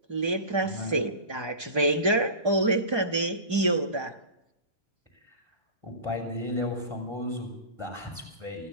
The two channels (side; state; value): left; late; 4.9 ms